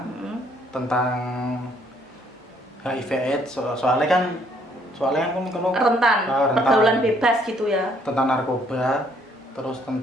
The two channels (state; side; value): normal; both; correlation 0.66